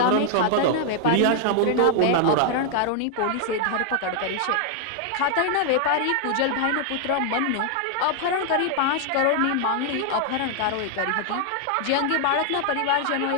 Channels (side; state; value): both; different; correlation 0.00